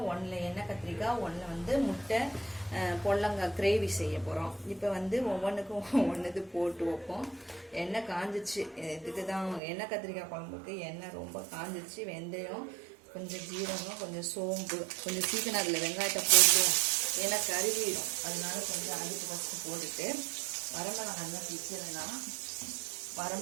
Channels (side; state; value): left; drops out; at 9.6 s